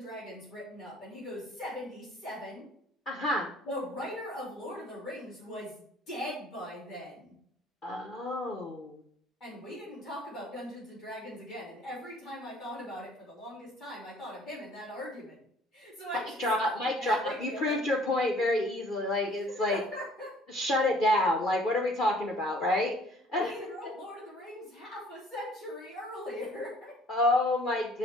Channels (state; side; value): normal; both; correlation 0.55